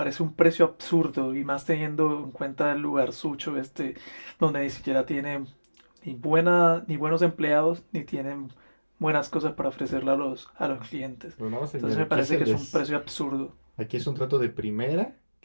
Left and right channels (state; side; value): inverted; both; correlation -1.00